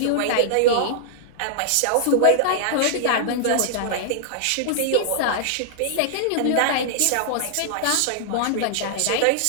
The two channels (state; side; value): different; both; correlation -0.01